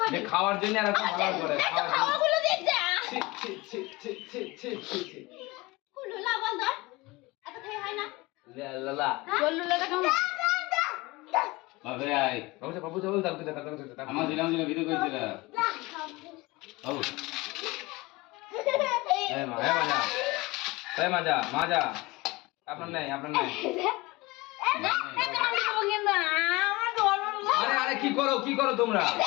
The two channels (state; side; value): quieter; right; 22.3 dB